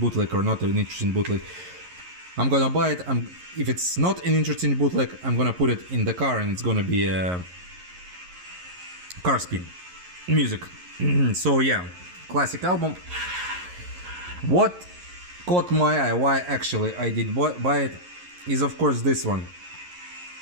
or not an interesting bootleg. I'm gonna buy it. If it's not an interesting bootleg, I'm gonna put it in the car and it's gonna be a car spin music. So yeah, classic album. What caught my eye, why actually I did buy it, is of course this one.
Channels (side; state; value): left; late; 11 ms